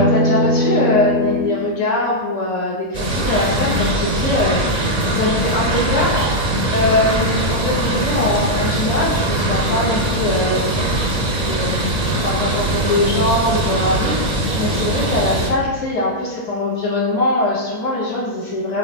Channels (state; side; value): late; right; 1.8 ms